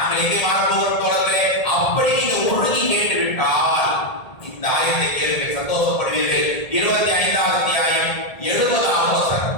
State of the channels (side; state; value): right; late; 1.8 ms